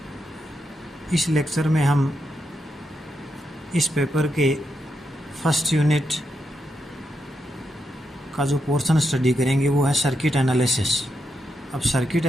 इस लेक्चर में हम इस पेपर के फर्स्ट यूनिट का जो पोर्शन स्टडी करेंगे वो है सर्किट एनालिसिस। अब सर्किट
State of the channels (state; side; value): normal; both; correlation 0.84